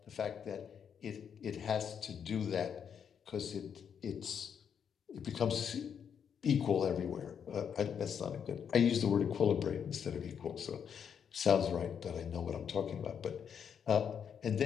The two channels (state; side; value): quieter; right; 7.7 dB